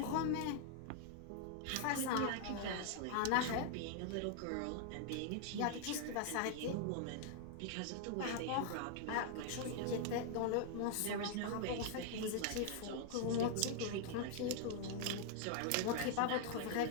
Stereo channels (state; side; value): different; both; correlation 0.00